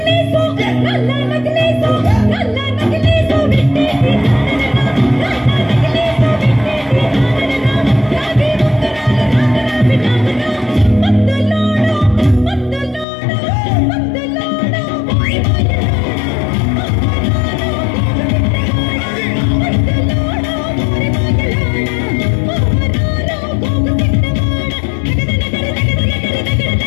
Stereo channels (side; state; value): right; drops out; at 13.1 s